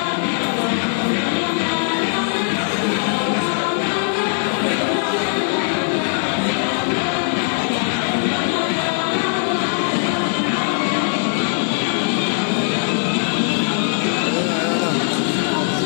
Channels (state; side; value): silent; right; 59 dB below the other